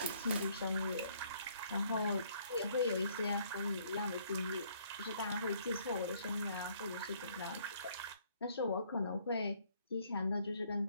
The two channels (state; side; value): inverted; both; correlation -0.64